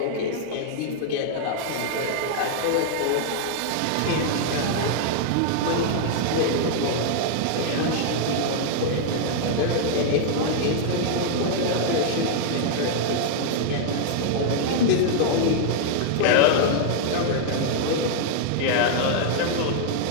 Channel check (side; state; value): both; different; correlation -0.01